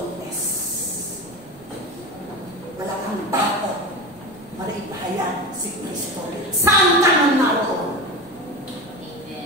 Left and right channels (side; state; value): left; noise; rumble, 25 dB below the sound